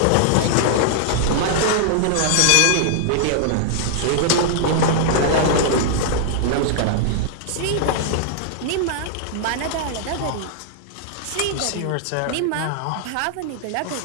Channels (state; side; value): different; both; correlation -0.01